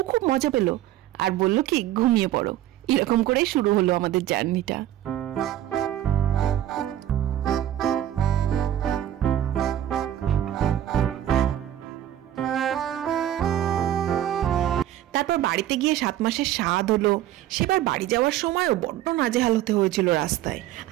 খুব মজা পেল আর বলল কি ঘুমিয়ে পড়ো। এরকম করেই শুরু হলো আমাদের জার্নিটা। তারপর বাড়িতে গিয়ে 7 মাসের স্বাদ হলো। সেবার বাড়ি যাওয়ার সময়ও বড্ড নাজেহাল হতে হয়েছিল রাস্তায়।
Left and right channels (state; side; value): quieter; left; 12.3 dB